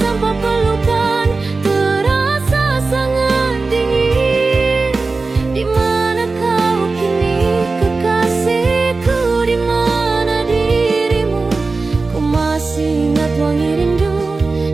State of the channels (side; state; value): left; quieter; 3.8 dB